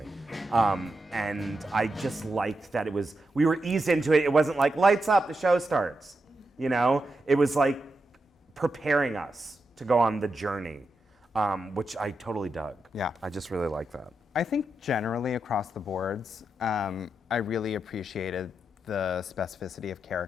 And I just liked that we were eased into it. It wasn't like, lights up, the show starts. It was like preparing us to go on the journey, which I totally dug. Yeah. I just really like that. I think generally across the boards, I really appreciated the specificity of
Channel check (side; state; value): both; normal; correlation 0.86